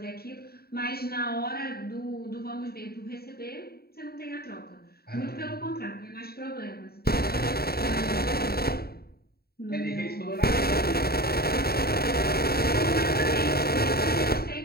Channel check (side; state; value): right; late; 0.45 ms